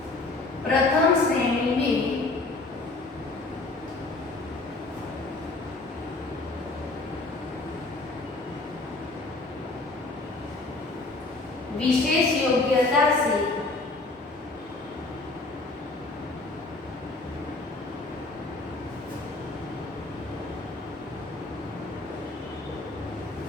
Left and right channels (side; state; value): right; quieter; 3.3 dB